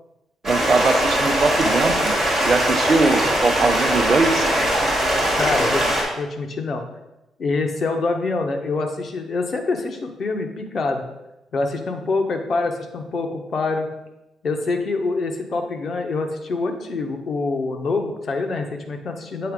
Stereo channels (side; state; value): both; normal; correlation 0.79